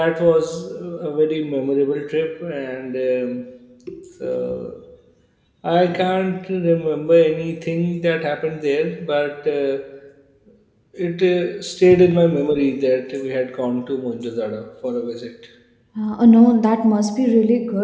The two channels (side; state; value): both; identical; correlation 1.00